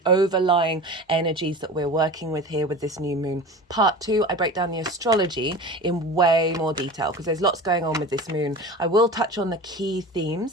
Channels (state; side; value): normal; both; correlation 0.34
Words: overlying energies that we're working with here with this new moon. Part 2, I break down the astrology in way more detail because there's lots going on with this moon. I will touch on the key